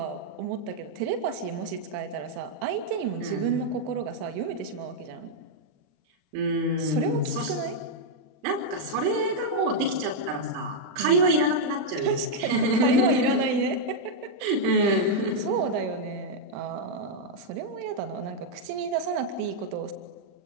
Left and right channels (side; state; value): left; late; 40 ms